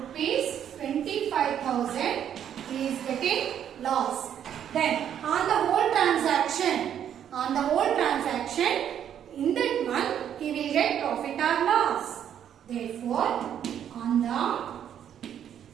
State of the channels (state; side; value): quieter; left; 9.5 dB